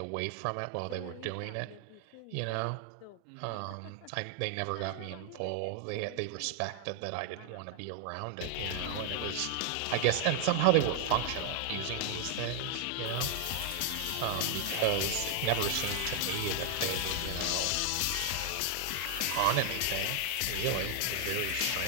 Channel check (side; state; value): both; different; correlation 0.00